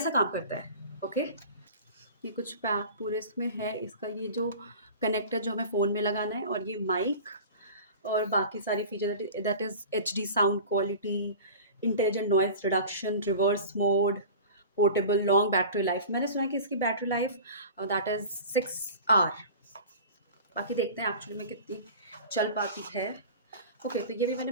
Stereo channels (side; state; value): both; inverted; correlation -0.37